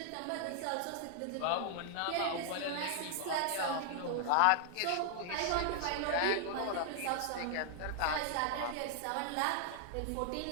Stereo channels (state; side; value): different; both; correlation 0.00